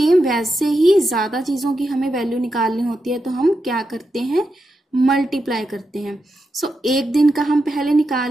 वैसे ही ज्यादा चीजों की हमें वैल्यू निकालनी होती है, तो हम क्या करते हैं मल्टीप्लाई करते हैं। सो एक दिन का हम पहले निकाल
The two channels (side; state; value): both; normal; correlation 0.87